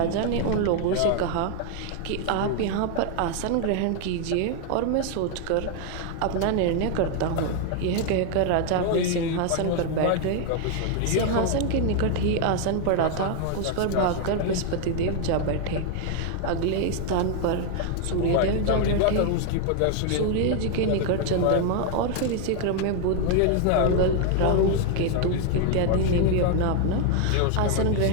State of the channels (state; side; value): different; both; correlation 0.00